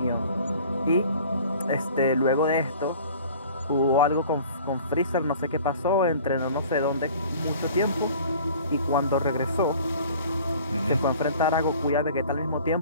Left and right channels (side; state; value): both; inverted; correlation -0.47